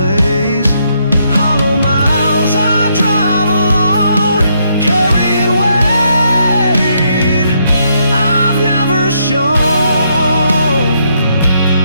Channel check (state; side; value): inverted; both; correlation -0.75